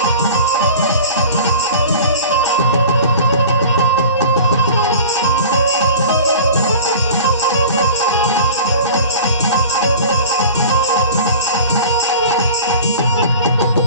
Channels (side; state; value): both; inverted; correlation -0.40